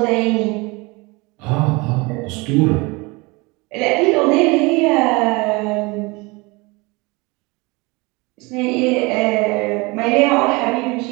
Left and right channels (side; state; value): left; quieter; 25.7 dB